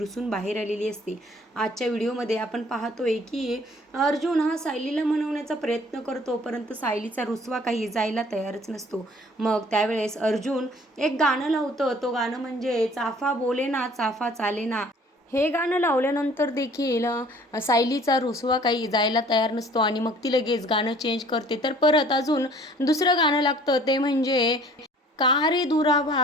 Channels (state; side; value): normal; both; correlation 0.54